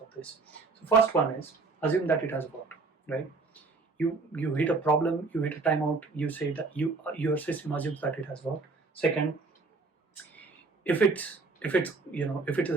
of this. So first one is assume that it has worked, right? You hit a problem, you hit a timeout, you say that your system assumes that it has worked. Second, if it's a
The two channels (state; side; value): quieter; left; 4.0 dB